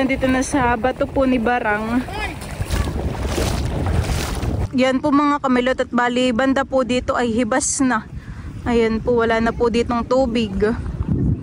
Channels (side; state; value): both; identical; correlation 1.00